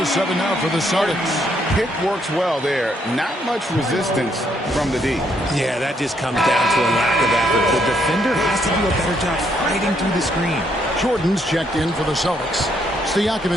7 now for the Celtics. Pick works well there. Not much resistance from the D. Yeah, that just comes down to a lack of effort. The defender has to do a better job fighting through the screen. Jordan's checked in for the Celtics.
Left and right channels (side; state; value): both; normal; correlation 0.72